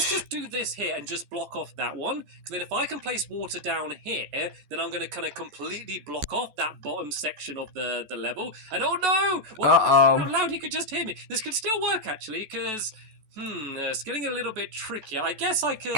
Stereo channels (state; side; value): late; left; 14 ms